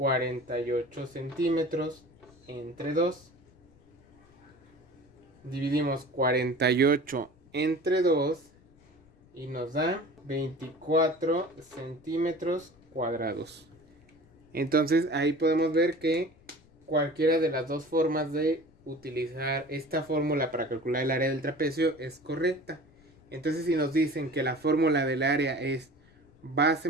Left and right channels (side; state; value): left; noise; rumble, 29 dB below the sound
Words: centímetros entre 2. Dividimos 48 entre 2 y nos da 24 centímetros cuadrados. Entonces ahí podemos ver que cualquiera de las dos formas de utilizar esta fórmula para calcular el área del trapecio es correcta. Entonces si nos dicen que la fórmula del área es base